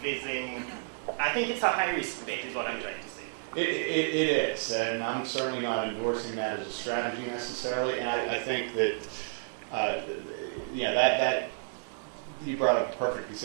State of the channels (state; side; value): silent; left; digital silence